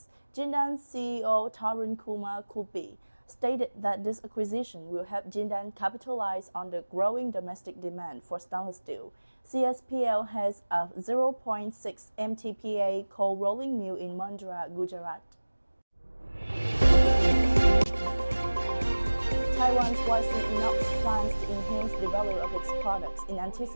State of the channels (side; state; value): both; inverted; correlation -1.00